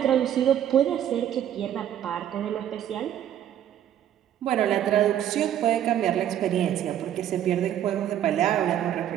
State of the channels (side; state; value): left; quieter; 10.8 dB